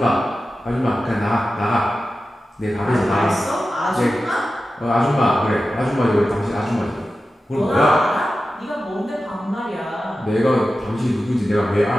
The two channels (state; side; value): normal; both; correlation 0.93